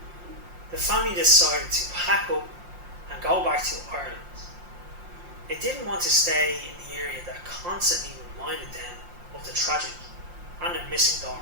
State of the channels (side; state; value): left; late; 5.7 ms